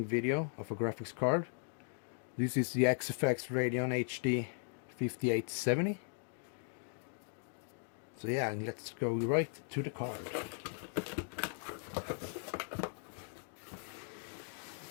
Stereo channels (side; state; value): right; silent; 52 dB below the other